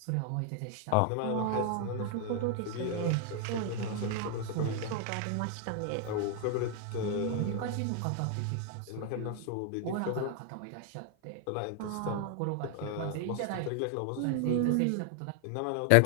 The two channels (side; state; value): both; different; correlation 0.00